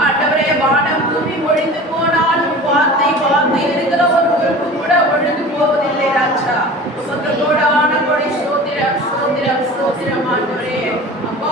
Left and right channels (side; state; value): both; normal; correlation 0.38